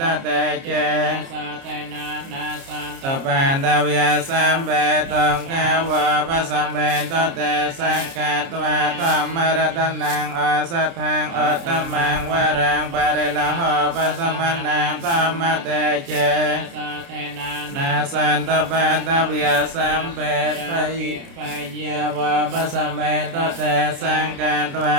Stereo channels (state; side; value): late; left; 30 ms